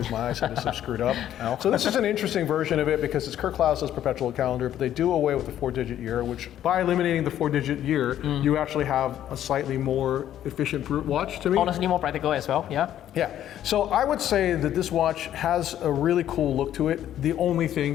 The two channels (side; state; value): right; quieter; 11.4 dB